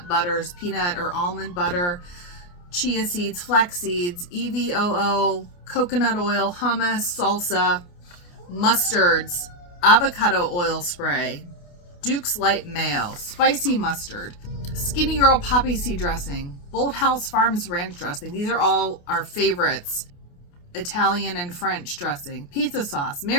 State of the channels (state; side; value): late; right; 28 ms